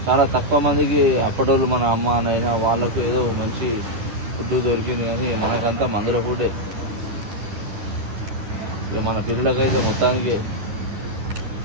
చాలా తక్కువ మందికి అప్పటోళ్ళు మన అమ్మ నైనా వాళ్ళకు ఏదో మంచి ఫుడ్ దొరికింది, కానీ మనకంతా మందుల ఫుడ్డే. ఇక మన పిల్లలకైతే మొత్తానికి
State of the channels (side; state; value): left; late; 10 ms